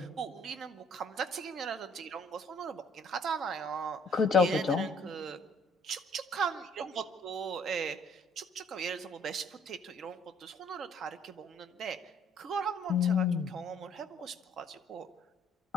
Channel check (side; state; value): both; normal; correlation 0.60